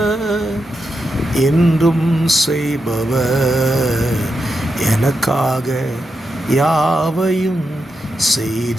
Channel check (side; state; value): both; normal; correlation 0.86